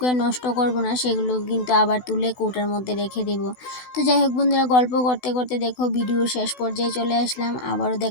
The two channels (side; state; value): right; late; 16 ms